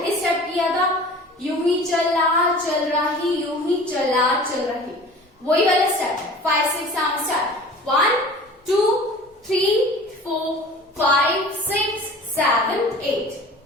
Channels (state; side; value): normal; both; correlation 0.42